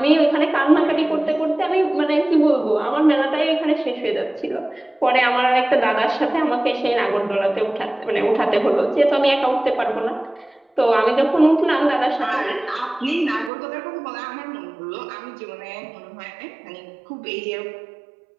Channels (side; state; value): left; drops out; at 13.5 s